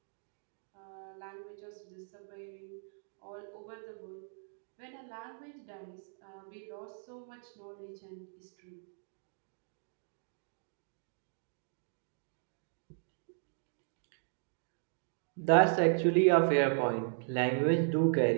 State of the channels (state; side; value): silent; left; digital silence